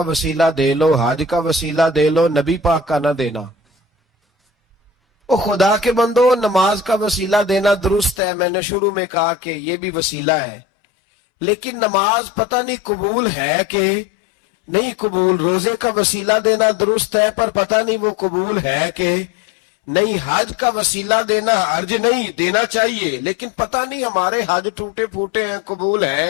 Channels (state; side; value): drops out; right; at 8.2 s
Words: وسیلہ دے لو، حج کا وسیلہ دے لو، نبی پاک کا نہ دینا۔ وہ خدا کے بندو، نماز کا وسیلہ دینا درست ہے، میں نے شروع میں کہا کہ یہ بھی وسیلہ ہے، لیکن نماز پتہ نہیں قبول ہے کہ نہیں قبول۔ روزے کا وسیلہ دینا درست ہے، پر پتہ نہیں وہ قبول ہے کہ نہیں۔ حج کا وسیلہ دینا حج نہیں دینا چاہیے، لیکن پتہ نہیں ہمارے حج ٹوٹے پھوٹے ہیں، قبول ہیں